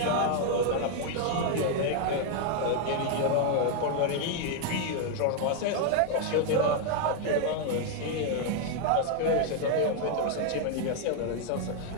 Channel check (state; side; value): different; both; correlation 0.00